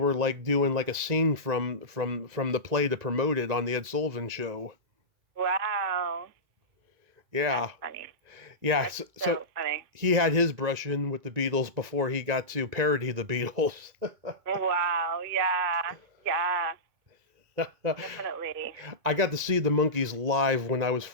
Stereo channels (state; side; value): late; left; 1.9 ms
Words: like doing like a scene from the play to promote it on the Ed Sullivan show. Wow, that's Yeah, funny. yeah. That's So so funny. he had his brush in with the Beatles before he got to parody the Beatles. Wow, yeah, yeah, definitely. I got to see the Monkees live when I was